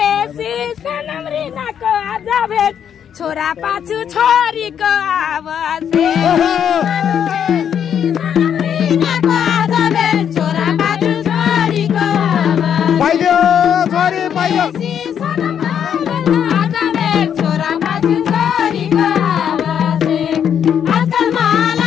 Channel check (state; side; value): quieter; right; 8.6 dB